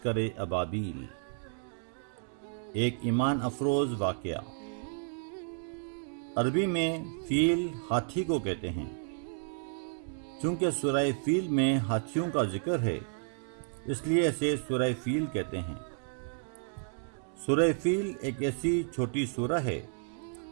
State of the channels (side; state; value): left; silent; digital silence